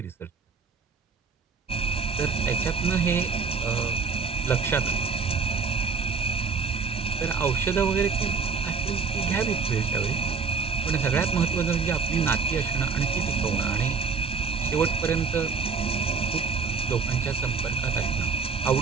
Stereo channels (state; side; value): quieter; left; 5.2 dB